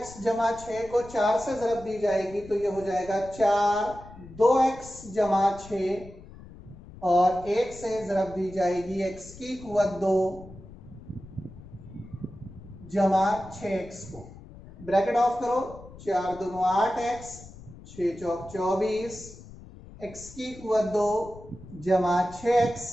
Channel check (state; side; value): noise; left; rumble, 18 dB below the sound